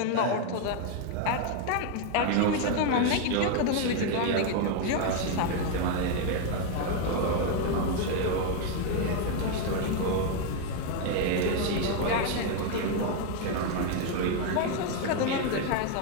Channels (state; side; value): different; both; correlation 0.01